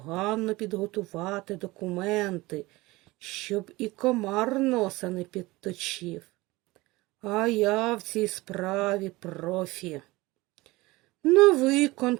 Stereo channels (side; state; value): left; quieter; 20.8 dB